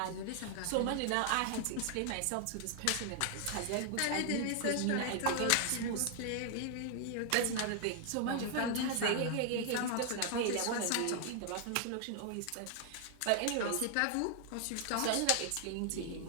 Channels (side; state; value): both; different; correlation 0.00